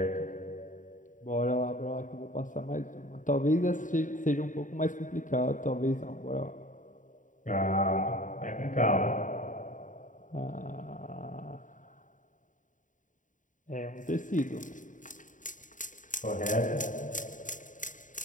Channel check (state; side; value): late; right; 0.37 ms